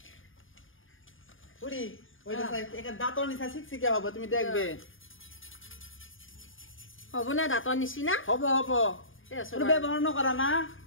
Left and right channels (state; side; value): late; right; 0.58 ms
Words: বুড়ি ওইটা সাই একটা দাঁতৰ নিচা শিক্ষিকা হবে তুমি দেখবে হ'ব না দাঁতৰ নিচিনা হব হব তোৰ ব্যবহাৰ নকৰা না